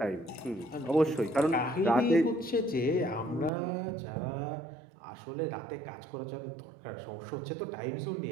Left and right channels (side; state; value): left; drops out; at 3.5 s